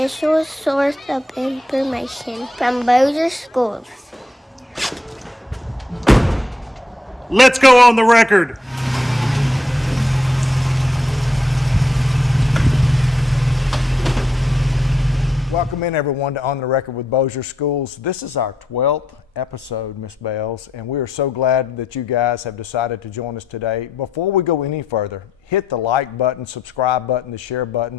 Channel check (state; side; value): normal; both; correlation 0.78